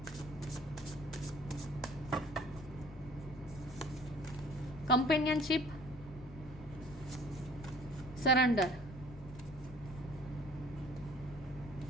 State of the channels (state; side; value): noise; left; rumble, 15 dB below the sound